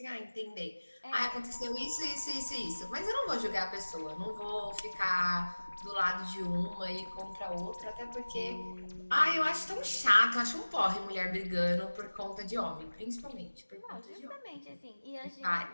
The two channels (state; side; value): inverted; both; correlation -1.00